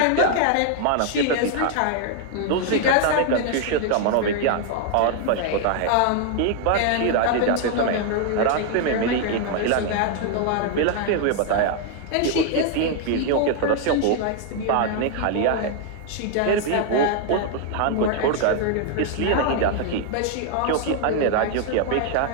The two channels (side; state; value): both; different; correlation 0.00